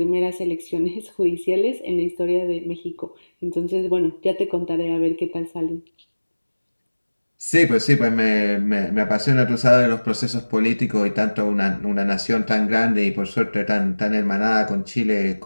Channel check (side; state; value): both; inverted; correlation -1.00